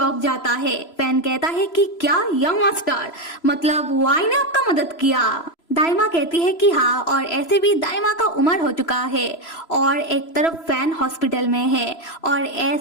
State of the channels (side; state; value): right; late; 3.0 ms